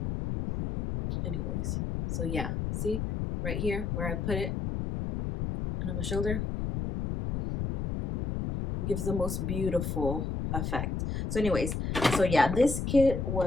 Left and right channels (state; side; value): noise; left; rumble, 2 dB below the sound